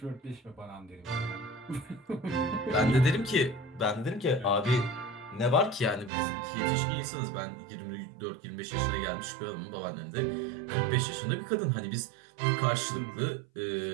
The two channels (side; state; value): left; drops out; at 6.1 s